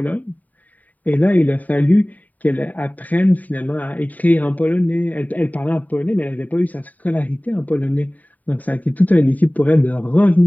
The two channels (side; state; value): right; late; 0.077 ms